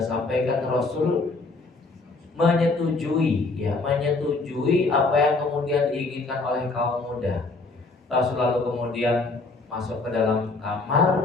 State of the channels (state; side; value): quieter; right; 3.6 dB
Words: Rasul menyetujui apa yang kemudian diinginkan oleh kaum muda. Rasul lalu kemudian masuk ke dalam